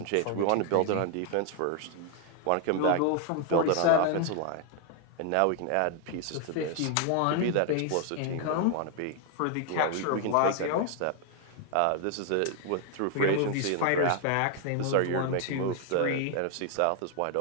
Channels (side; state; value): both; different; correlation 0.00